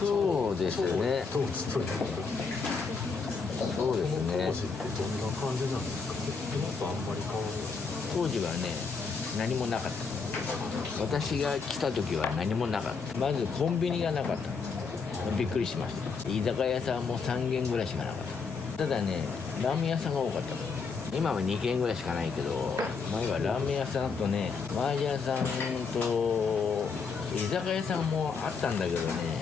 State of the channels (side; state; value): right; quieter; 5.0 dB